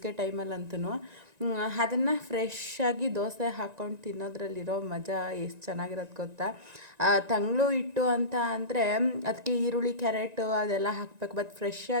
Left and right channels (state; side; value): late; left; 1.9 ms